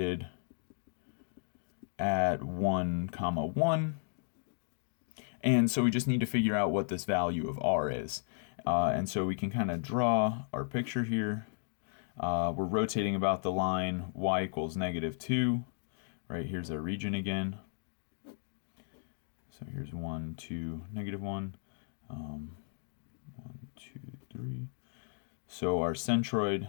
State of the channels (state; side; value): silent; right; digital silence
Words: at 1, 1. And so we just need to figure out what this value of r is. And so we can kind of draw our picture here. We're rotating about the line y equals -2. Right, here's our region again. So here's 1, 2, -1. 1, 2, 3. So our centroid